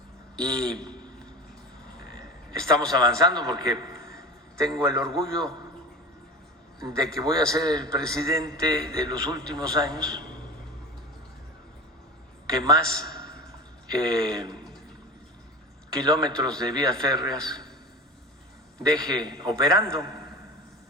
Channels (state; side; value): normal; both; correlation 0.31